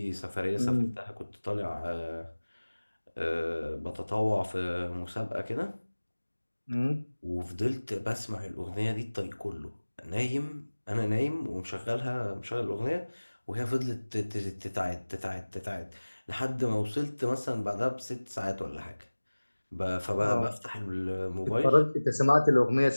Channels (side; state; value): both; inverted; correlation -1.00